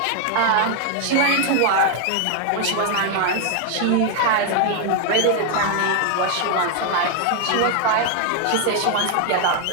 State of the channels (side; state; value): both; different; correlation 0.00